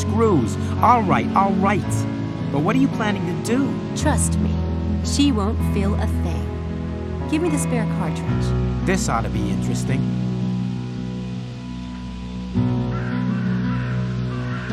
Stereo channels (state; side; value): identical; both; correlation 1.00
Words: All right, all right. But what are you planning to do? Trust me, she won't feel a thing. Give me the spare cartridge. This ought to be interesting.